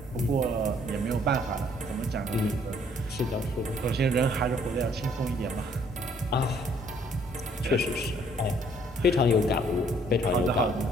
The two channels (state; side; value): normal; both; correlation 0.62